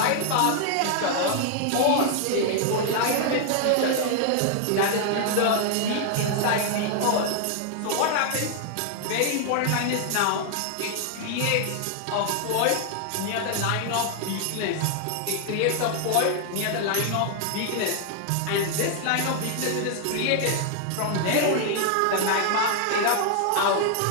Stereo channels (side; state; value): both; different; correlation 0.00